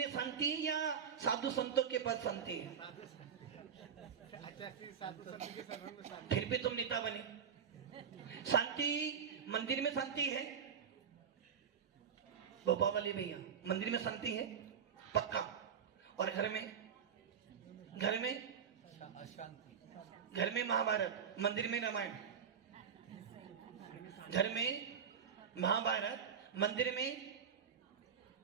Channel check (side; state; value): left; quieter; 7.3 dB